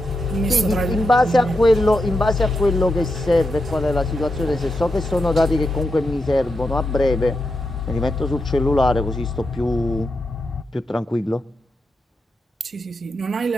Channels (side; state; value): both; normal; correlation 0.86